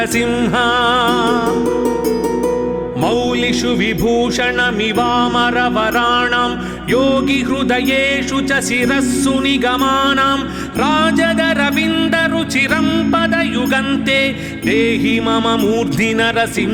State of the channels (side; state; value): both; identical; correlation 1.00